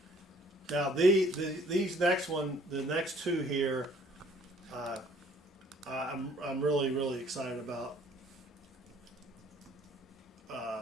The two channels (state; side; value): normal; both; correlation 0.58